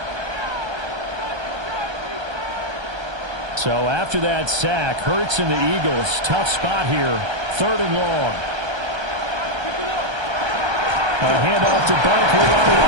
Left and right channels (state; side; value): late; left; 1.3 ms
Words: So after that sack, Hurts and the Eagles, tough spot here, 3rd and long. A handoff to Barkley on the